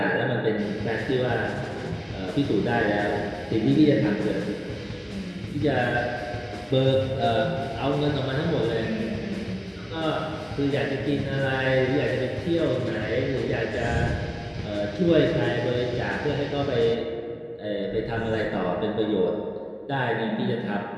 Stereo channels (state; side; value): identical; both; correlation 1.00